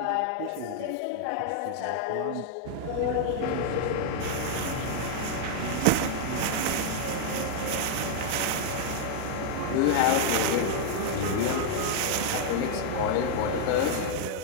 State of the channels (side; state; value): both; different; correlation 0.00